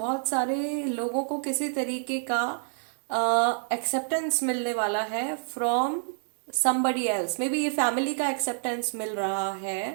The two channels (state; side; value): silent; left; 60 dB below the other